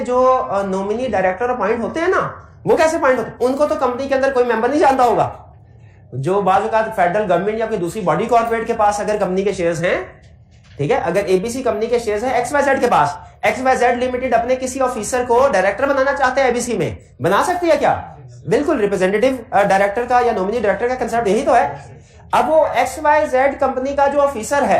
जो नॉमिनी डायरेक्टर अपॉइंट होते हैं ना, वो कैसे अपॉइंट होते हैं? उनको तो कंपनी के अंदर कोई मेंबर नहीं जानता होगा। जो बाजू का फेडरल गवर्नमेंट या कोई दूसरी बॉडी कॉर्पोरेट के पास अगर कंपनी के शेयर्स हैं, ठीक है, अगर एबीसी कंपनी के शेयर्स हैं XYZ के पास, XYZ लिमिटेड अपने किसी ऑफिसर को डायरेक्टर बनाना चाहते हैं एबीसी में, बना सकती है क्या? बिल्कुल। रिप्रेजेंटेटिव डायरेक्टर का या नॉमिनी डायरेक्टर का कंसेप्ट यही तो है। अब वो XYZ कंपनी का जो ऑफिसर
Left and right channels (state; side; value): identical; both; correlation 1.00